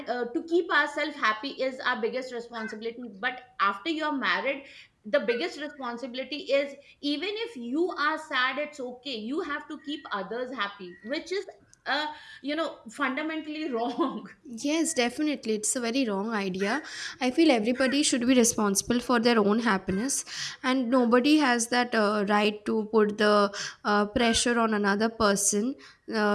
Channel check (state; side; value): identical; both; correlation 1.00